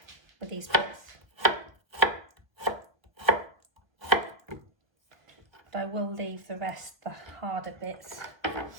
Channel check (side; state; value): left; late; 1.1 ms